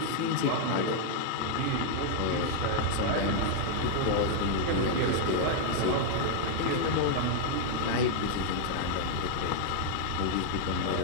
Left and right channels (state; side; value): different; both; correlation 0.00